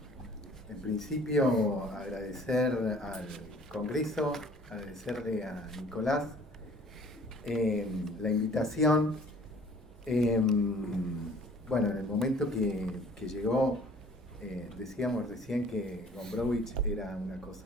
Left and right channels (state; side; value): normal; both; correlation 0.52